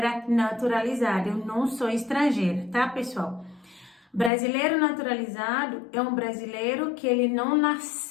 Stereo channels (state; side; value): drops out; right; at 4.3 s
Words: naturalizada, eu não sou estrangeira, tá, pessoal? Brasileiro naturalizado é um brasileiro que ele não